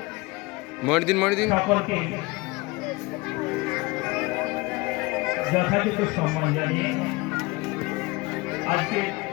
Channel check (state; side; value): quieter; right; 23.8 dB